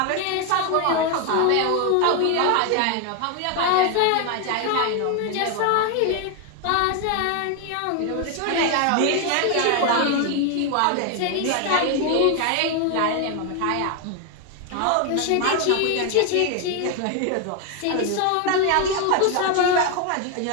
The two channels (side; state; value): both; different; correlation 0.01